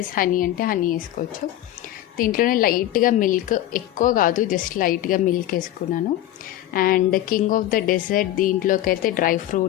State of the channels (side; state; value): right; quieter; 13.5 dB